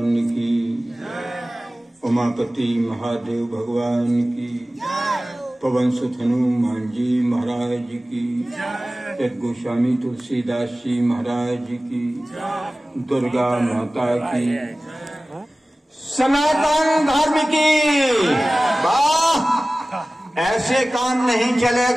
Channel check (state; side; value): normal; both; correlation 0.97